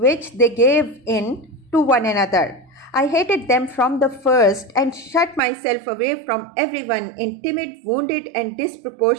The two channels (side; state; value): left; drops out; at 5.4 s